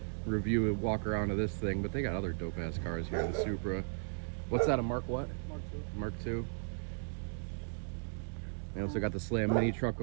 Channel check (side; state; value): left; silent; digital silence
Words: review and walk around of this thing. But they got other dope ass cars here. The Supra. What's that? A Mark what? Mark II. Mark II. They also got the Slam mini truck